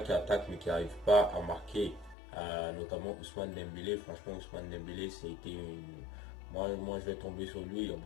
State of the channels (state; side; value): drops out; right; at 2.1 s